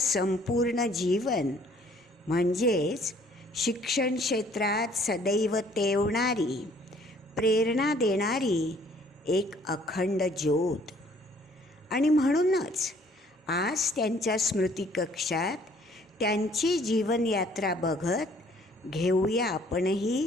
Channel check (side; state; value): both; normal; correlation 0.59